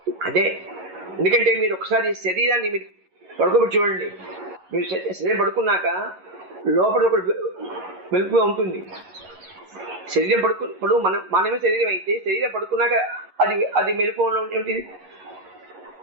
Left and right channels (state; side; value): late; left; 11 ms